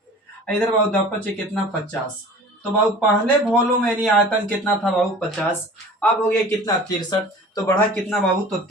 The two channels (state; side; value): normal; both; correlation 0.42